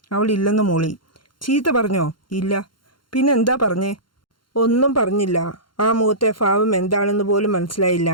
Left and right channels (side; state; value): right; late; 0.72 ms